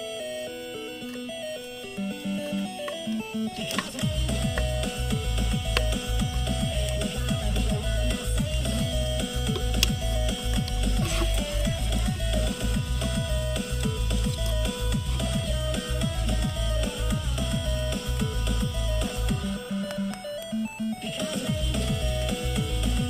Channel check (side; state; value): both; identical; correlation 1.00